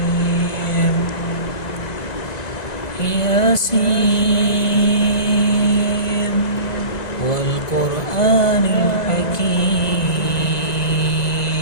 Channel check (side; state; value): right; late; 1.9 ms